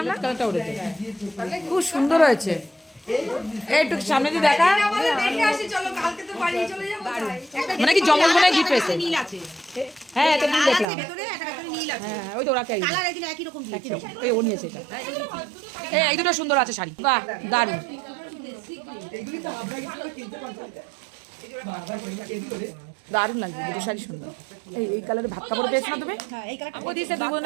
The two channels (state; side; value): drops out; left; at 10.9 s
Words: না কালারটা উঠেছে, খুব সুন্দর হয়েছে। একটু সামনে দিয়ে দেখা, মানে কি জমল মনে গিফট পেয়েছে। হ্যাঁ এটা নীল দেখলাম, হ্যাঁ ওই তো ওরা কে এই ও নিয়েছে এটা। এই দুটো সুন্দর আছে শাড়ি, বাহ দারুন দারুণ লাগছে দুটো শাড়ি সুন্দর। এই কালারে ভাত কাপড় পেয়েছো না তুমি? ও দিয়েছে